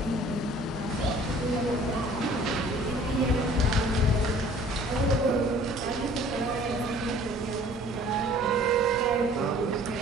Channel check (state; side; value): normal; both; correlation 0.52